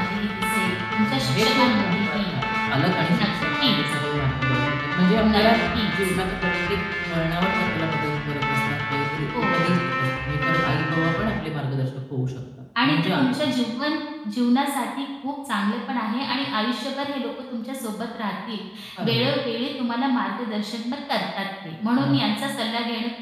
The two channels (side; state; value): both; identical; correlation 1.00